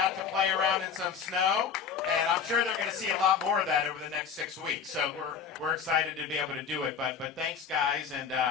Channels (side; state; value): right; quieter; 6.7 dB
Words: to play around in some snow, and I'm sure they're going to see a lot more of that over the next 6 weeks. So we're excited to be able to do it. But thanks, guys, and